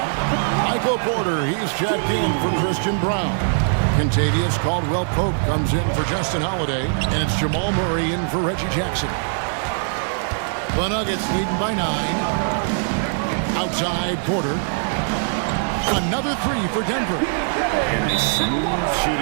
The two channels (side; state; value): left; silent; 65 dB below the other